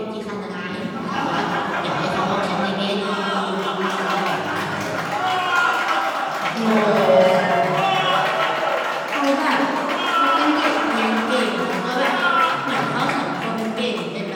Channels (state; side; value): identical; both; correlation 1.00